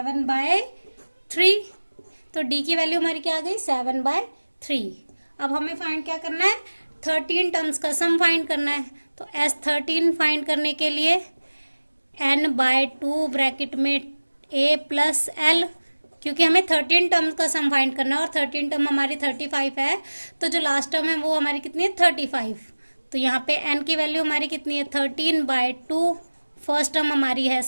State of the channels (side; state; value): both; inverted; correlation -1.00